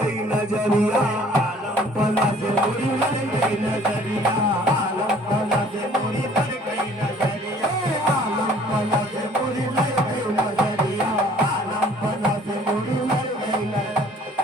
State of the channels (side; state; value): both; normal; correlation 0.55